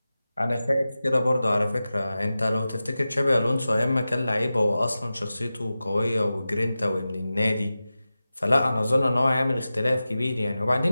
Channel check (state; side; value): inverted; both; correlation -0.94